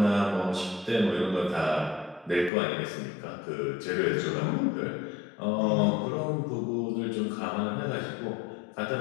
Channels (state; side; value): drops out; right; at 2.5 s